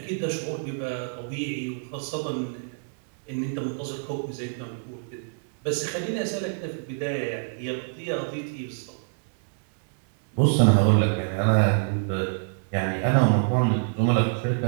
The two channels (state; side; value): silent; left; digital silence